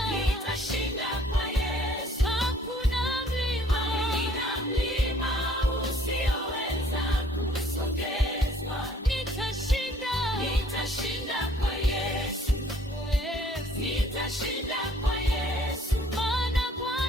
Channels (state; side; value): normal; both; correlation 0.59